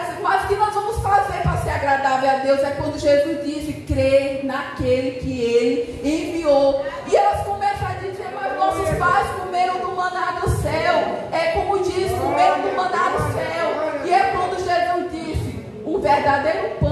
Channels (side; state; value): both; identical; correlation 1.00